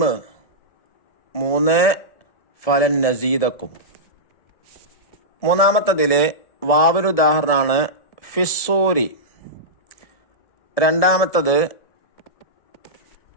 3 ഫലൻ നസീദക്കും. മൂന്നാമത്തതില് വാവിന് ഉദാഹരണമാണ് ഫിസ്സൂരി, രണ്ടാമത്തത്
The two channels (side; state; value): right; late; 1.7 ms